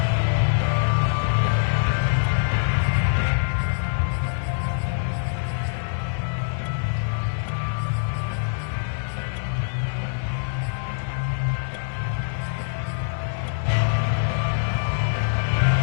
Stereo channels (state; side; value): silent; right; 59 dB below the other